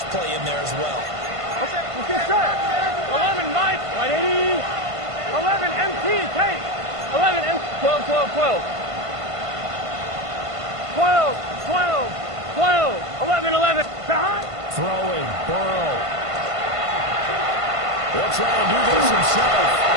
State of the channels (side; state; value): left; late; 1.5 ms